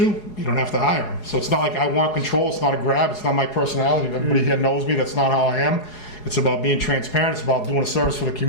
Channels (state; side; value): late; right; 4.8 ms